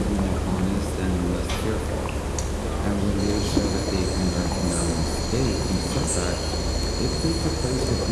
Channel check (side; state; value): both; identical; correlation 1.00